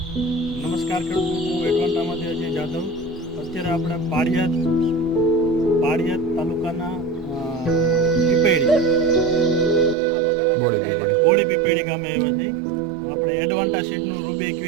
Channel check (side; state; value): left; drops out; at 10.0 s